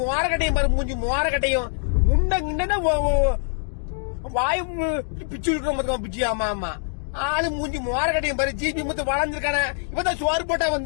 மோரக்கட்டையும் பாரு, மூஞ்சி மோரக்கட்டையும். முண்டா வாயு பிச்சு இருக்கிற பிச்சு. ஆமா ஆமா, ஆளு மூஞ்சி மோரக்கட்டையும் பாரு. ஜிபி முத்து வளர்ந்துருக்கான இவதான் சோறு போட்டா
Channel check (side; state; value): right; silent; digital silence